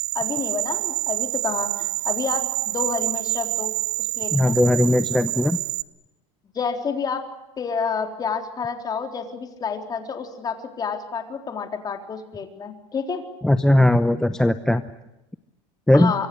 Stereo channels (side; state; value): both; normal; correlation 0.70